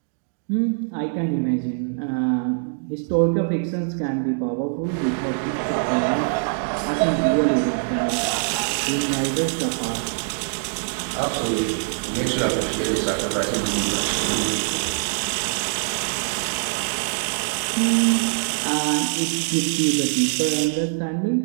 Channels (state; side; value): silent; left; digital silence